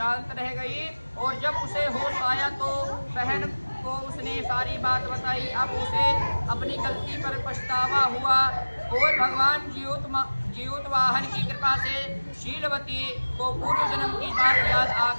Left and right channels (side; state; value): both; inverted; correlation -1.00